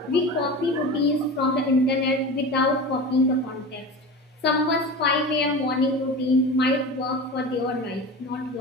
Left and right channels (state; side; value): normal; both; correlation 0.30